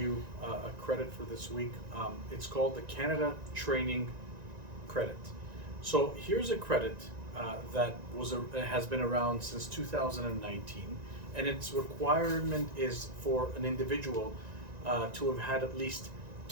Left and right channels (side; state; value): left; late; 1.9 ms